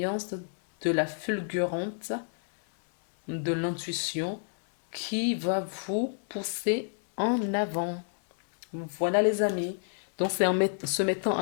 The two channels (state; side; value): silent; right; digital silence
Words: de la fulgurante de l'intuition qui va vous pousser en avant. Voilà les amis. Donc c'est en se mettant